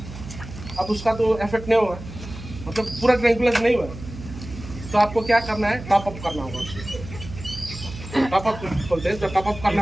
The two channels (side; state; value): right; noise; hum, 13 dB below the sound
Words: अब उसका तो इफेक्ट नहीं हुआ, मतलब पूरा ट्रैंकुलाइज नहीं हुआ, तो आपको क्या करना है, टॉप अप करना होगा। टॉप अप बोलते हैं, तो टॉप अप